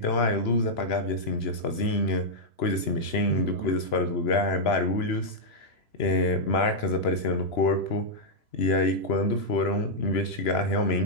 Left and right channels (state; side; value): late; right; 3.0 ms